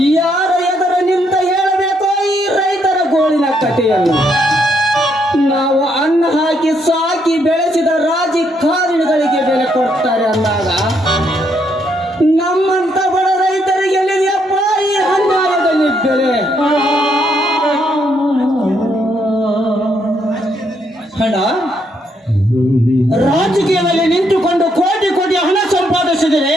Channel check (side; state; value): both; normal; correlation 0.74